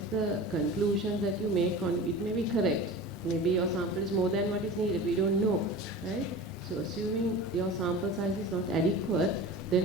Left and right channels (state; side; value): normal; both; correlation 0.34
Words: the conclusions that you make on it may be correct. Maybe your sample is more than what is needed. We don't know, right? So assuming your sample size is not adequate,